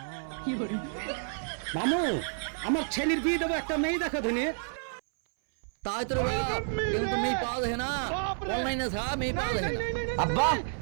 মামু, আমার ছেলের বিয়ে দেবো, একটা মেয়ে দেখা ধনি। তাই তো রে বাপ, কিন্তু মেয়ে পাওয়া যায় না, অনলাইনে ছাড়া মেয়ে পাওয়া যায় না। আব্বা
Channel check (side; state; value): left; silent; 58 dB below the other